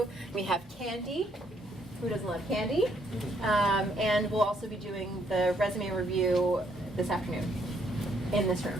We have candy. Who doesn't love candy? And we'll also be doing the resume review this afternoon in this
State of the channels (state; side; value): normal; both; correlation 0.70